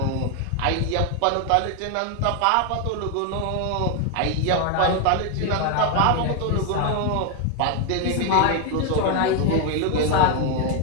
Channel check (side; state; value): both; different; correlation 0.01